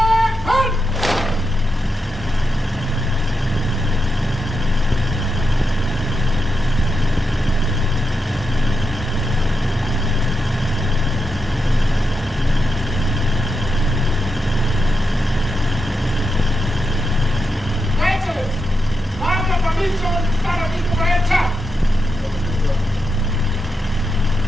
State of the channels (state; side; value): normal; both; correlation 0.86